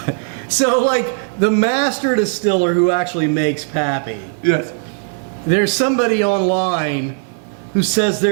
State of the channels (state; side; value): silent; left; 61 dB below the other